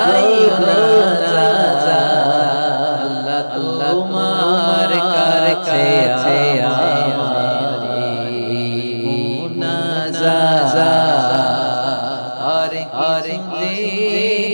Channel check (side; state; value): both; inverted; correlation -1.00